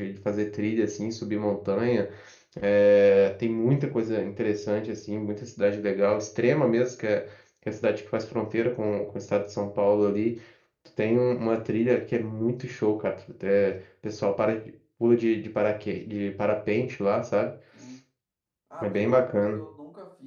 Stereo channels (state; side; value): identical; both; correlation 1.00